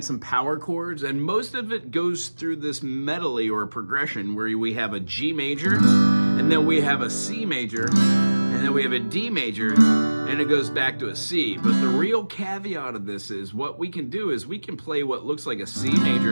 some power chords, and most of it goes through this medley or progression where we have a G major, and then we have a C major, and then we have a D major, and it goes back to a C. But the real caveat of this is what we can do is we can play what looks like a C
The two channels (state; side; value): inverted; both; correlation -1.00